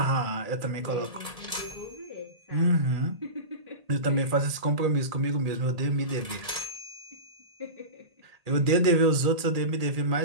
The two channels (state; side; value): late; left; 1.7 ms